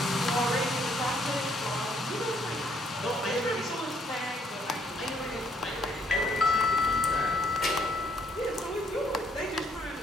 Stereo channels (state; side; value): normal; both; correlation 0.68